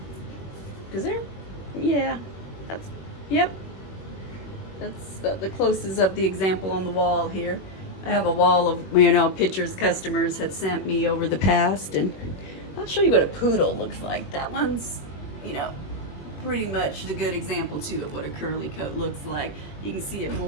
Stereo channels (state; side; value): late; right; 21 ms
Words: Because they're, yeah, that's, yep. That's the closest of the example on the wall here. I have a wall of, you know, pictures customers had sent me over the past, and I'll show you what a poodle looks like. That one's, you know, pretty much the good example too of what a curly coat looks like. You can see it